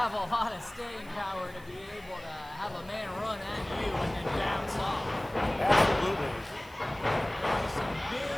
a lot of staying power to be able to have a man run at you and then bounce off. Absolutely. Some big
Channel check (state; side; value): noise; right; hiss, 24 dB below the sound